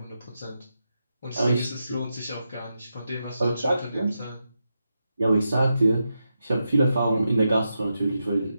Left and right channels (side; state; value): both; inverted; correlation -0.87